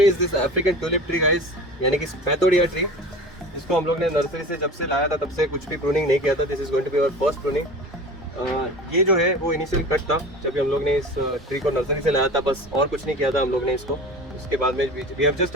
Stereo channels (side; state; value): both; normal; correlation 0.36